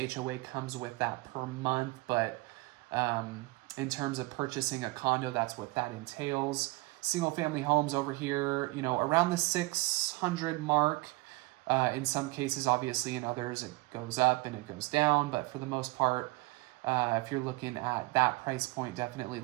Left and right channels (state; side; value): quieter; left; 23.2 dB